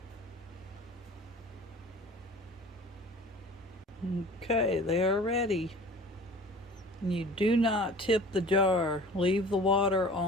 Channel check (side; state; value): both; normal; correlation 0.43